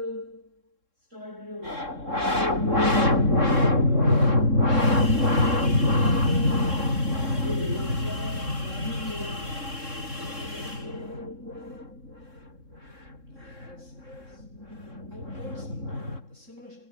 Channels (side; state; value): left; late; 3.7 ms